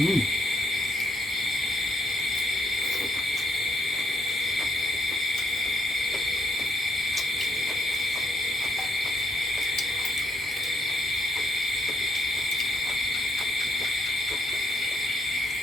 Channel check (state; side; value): normal; both; correlation 0.74